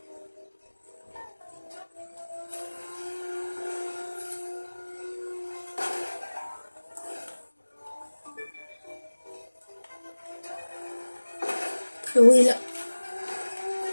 Frérot est là.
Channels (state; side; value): inverted; both; correlation -1.00